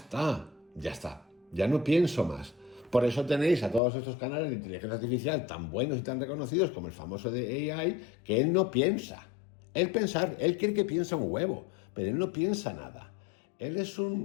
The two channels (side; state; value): right; drops out; at 3.8 s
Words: ya no pienso más. Por eso tenéis a todos estos canales de inteligencia artificial tan buenos y tan reconocidos como el famoso de AI, que él no piensa. Él cree que piensa un huevo, pero él no piensa nada. Él es